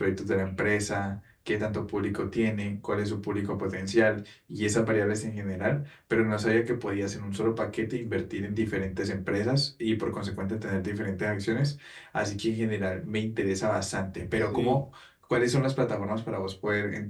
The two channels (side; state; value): both; identical; correlation 1.00